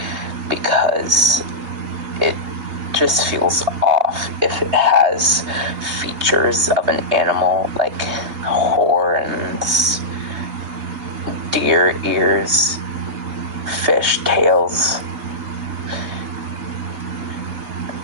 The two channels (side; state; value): left; late; 2.8 ms